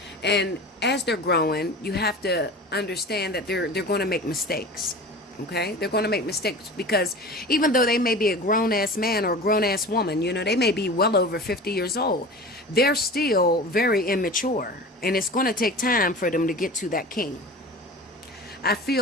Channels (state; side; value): normal; both; correlation 0.36